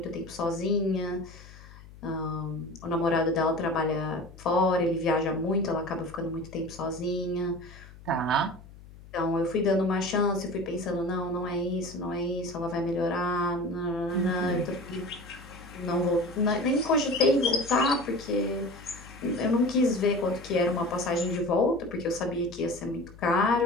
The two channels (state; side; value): noise; left; hum, 19 dB below the sound